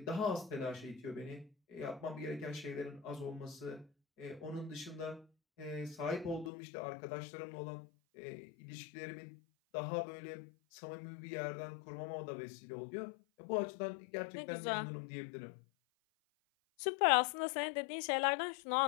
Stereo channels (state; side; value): drops out; right; at 6.5 s